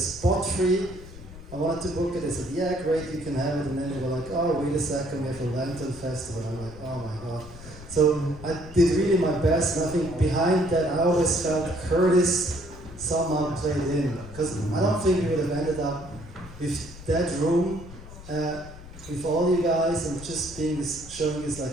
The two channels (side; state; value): left; noise; rumble, 16 dB below the sound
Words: free. I wanted to book it. They said, yeah, great, you can have it. And then they were like, oh, wait a second, we have a Lantern Festival. And I'm like, oh my God. So I did really my best, and I think behind that I always felt Curtis somehow played in. Because I don't think we would have ended up with that room, with all you guys, and just being this, showing this